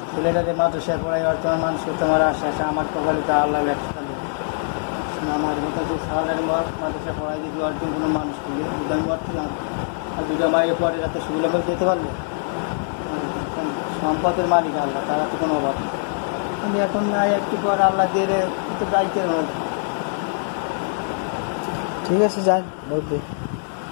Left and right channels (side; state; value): right; silent; 63 dB below the other